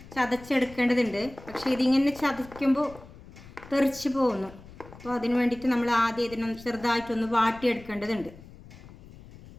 ചതച്ചെടുക്കേണ്ടതുണ്ട്. പക്ഷേ ഇതിങ്ങനെ ചതയ്ക്കുമ്പോൾ തെറിച്ച് പോകുന്നു. അപ്പോൾ അതിന് വേണ്ടിയിട്ട് നമ്മൾ ആദ്യം ഇതിനൊന്ന് ചെറുതായിട്ടൊന്ന് വാട്ടിയെടുക്കേണ്ടതുണ്ട്.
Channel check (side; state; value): left; noise; rumble, 19 dB below the sound